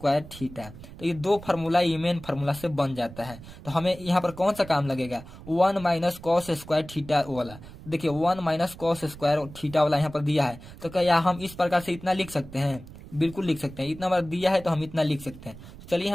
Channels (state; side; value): noise; right; rumble, 16 dB below the sound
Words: थीटा। तो ये दो फार्मूला ये मेन फार्मूला से बन जाता है। तो हमें यहाँ पर कौन सा काम लगेगा, 1 माइनस कॉस स्क्वायर थीटा वाला। देखिए 1 माइनस कॉस स्क्वायर थीटा वाला यहाँ पर दिया है, तो क्या हम इस प्रकार से इतना लिख सकते हैं, बिल्कुल लिख सकते हैं। इतना बार दिया है तो हम इतना लिख सकते हैं। चलिए